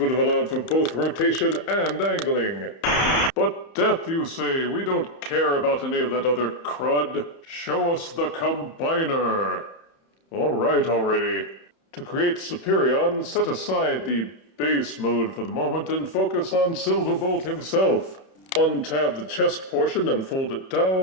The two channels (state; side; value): late; right; 31 ms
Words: have allowed for both rotation and angling. But death, you say, we don't care about any of that other crud. Show us the combiner. Alright already. To create Superion, set aside the base mode for the moment and focus on Silverbolt himself. Untab the chest portion and fold it